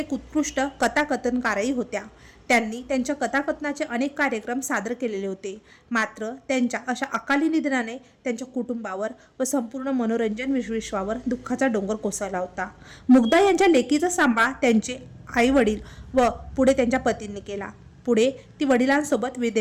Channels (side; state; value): both; identical; correlation 1.00